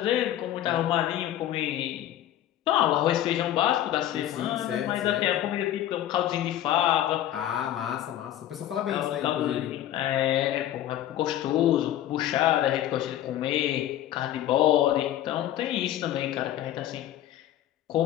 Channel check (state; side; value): quieter; right; 12.4 dB